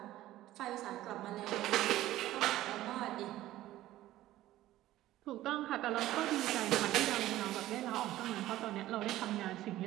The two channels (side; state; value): left; quieter; 15.0 dB